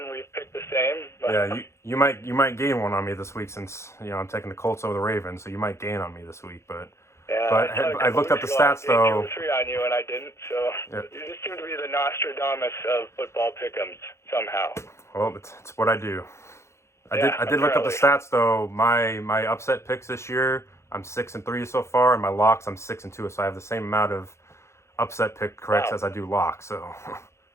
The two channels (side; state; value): right; late; 0.13 ms